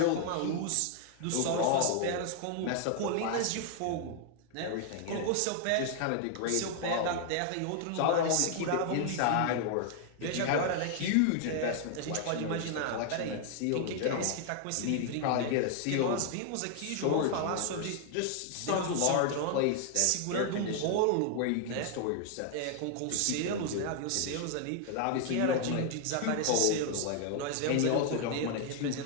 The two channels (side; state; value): both; different; correlation 0.00